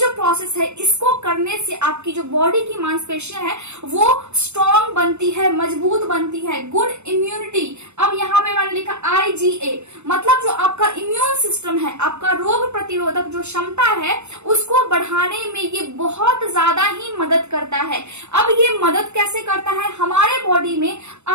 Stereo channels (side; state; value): left; late; 0.82 ms